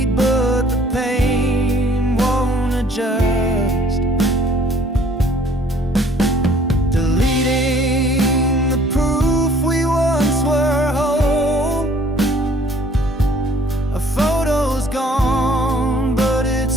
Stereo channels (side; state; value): both; normal; correlation 0.56